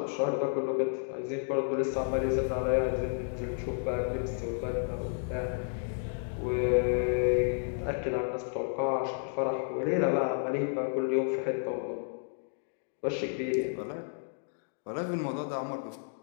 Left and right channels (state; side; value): silent; right; digital silence